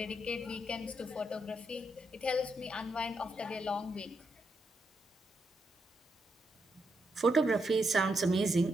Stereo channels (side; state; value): both; normal; correlation 0.81